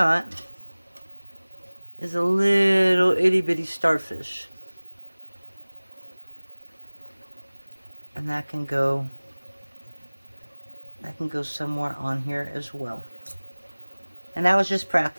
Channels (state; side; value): inverted; both; correlation -1.00